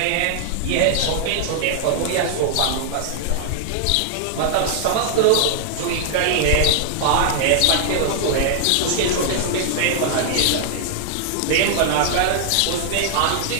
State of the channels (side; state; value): both; different; correlation -0.01